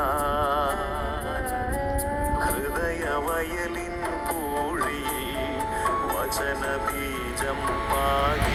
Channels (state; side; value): identical; both; correlation 1.00